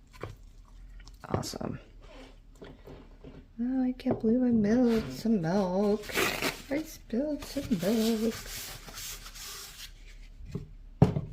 Awesome. Oh, I can't believe I spilled some milk. I spilled some milk.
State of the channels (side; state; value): both; identical; correlation 1.00